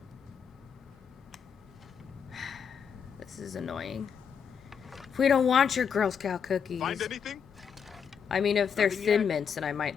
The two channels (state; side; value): quieter; right; 7.1 dB